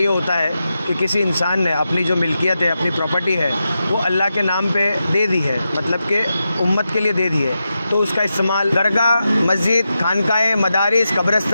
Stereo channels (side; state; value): both; inverted; correlation -0.89